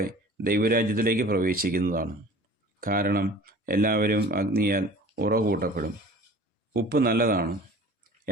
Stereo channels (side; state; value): both; normal; correlation 0.44